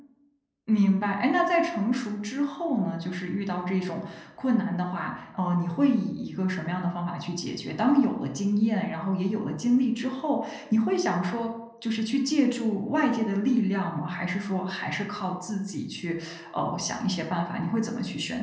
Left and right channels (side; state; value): both; identical; correlation 1.00